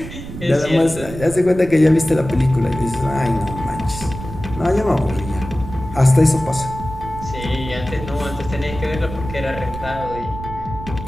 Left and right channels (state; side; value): noise; right; rumble, 11 dB below the sound